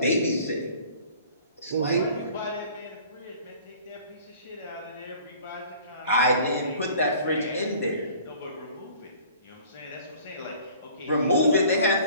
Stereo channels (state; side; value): inverted; both; correlation -0.50